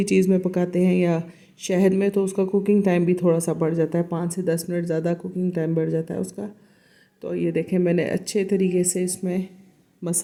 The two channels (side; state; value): both; identical; correlation 1.00